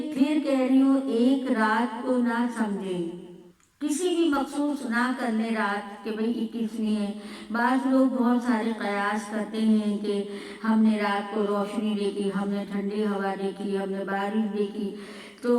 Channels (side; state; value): both; identical; correlation 1.00